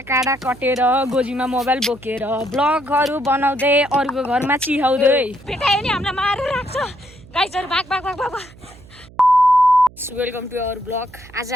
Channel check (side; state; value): right; noise; hum, 22 dB below the sound